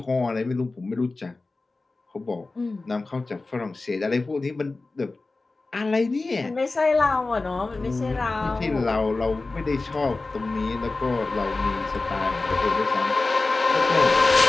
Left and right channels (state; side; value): quieter; right; 3.5 dB